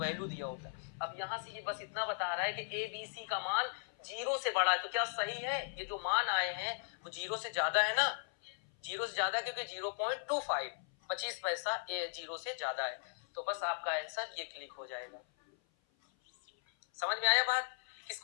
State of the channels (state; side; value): silent; right; 53 dB below the other